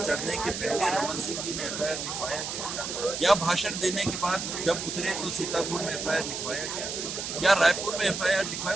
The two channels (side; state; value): right; noise; hiss, 5 dB below the sound